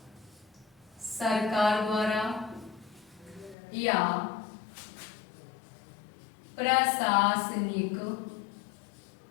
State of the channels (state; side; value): drops out; right; at 3.6 s